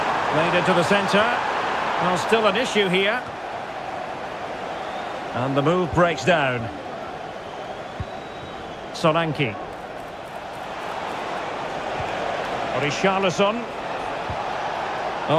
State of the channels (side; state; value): both; identical; correlation 1.00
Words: Played into the centre. Well, still an issue here. And the move breaks down. Solanke. Richarlison.